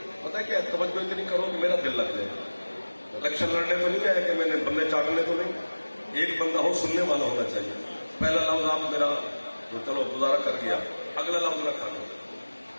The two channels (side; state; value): both; inverted; correlation -1.00